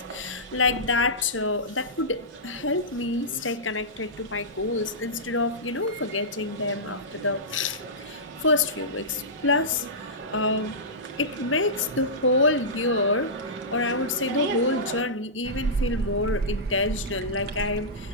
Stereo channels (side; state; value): both; normal; correlation -0.16